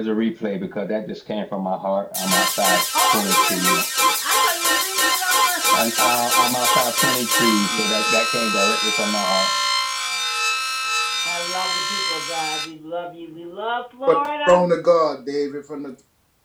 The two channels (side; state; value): both; identical; correlation 1.00